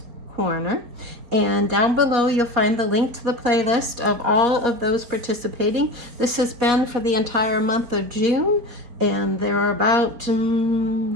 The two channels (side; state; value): left; late; 4.2 ms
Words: Corner. And down below you'll find the link to the playlist of all of those participating. This has been for the entire month of June, and there are about,